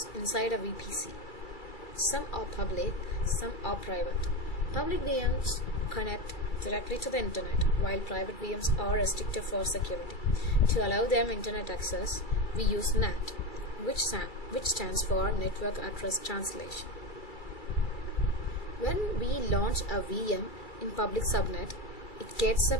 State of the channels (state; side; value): late; right; 2.3 ms